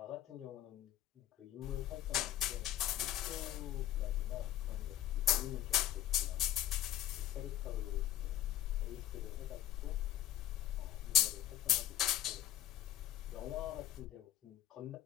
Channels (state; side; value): quieter; right; 12.6 dB